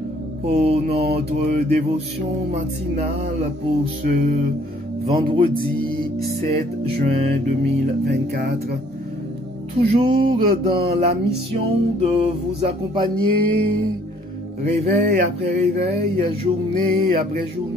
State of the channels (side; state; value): both; normal; correlation 0.61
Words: pour notre dévotion matinale pour ce vendredi 7 juin 2024. Toujours dans la mission de vous accompagner, réveil après réveil, journée après